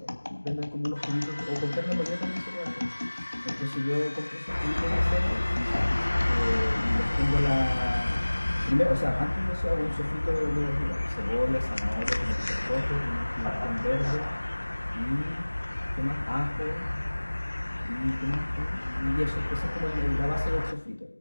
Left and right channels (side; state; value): both; inverted; correlation -1.00